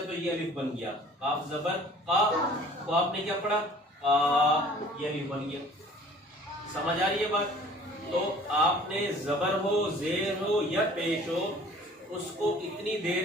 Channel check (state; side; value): normal; both; correlation 0.50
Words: تو یہ الف بن گیا. کاف زبر کا کو آپ نے کیا پڑھا؟ کا. یہ الف بن گیا. سمجھ آ رہی ہے بات؟ تو آپ نے زبر ہو، زیر ہو یا پیش ہو، اس کو اتنی